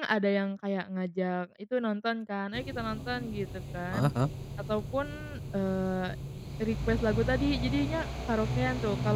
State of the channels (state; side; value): identical; both; correlation 1.00